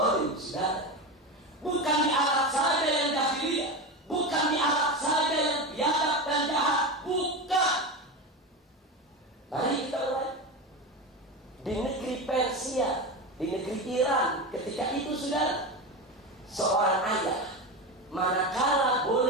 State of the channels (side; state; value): both; normal; correlation 0.20